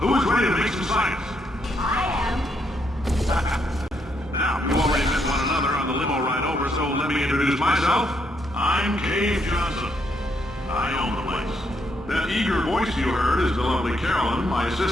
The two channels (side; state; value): both; normal; correlation 0.76